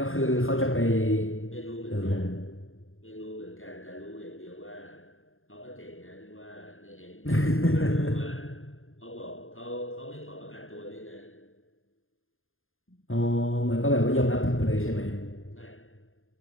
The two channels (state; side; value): late; right; 0.60 ms